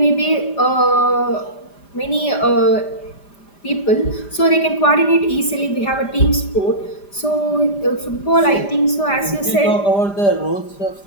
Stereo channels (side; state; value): right; late; 5.0 ms